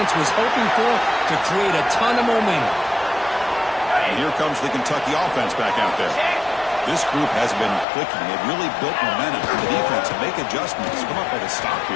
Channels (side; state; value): right; drops out; at 7.9 s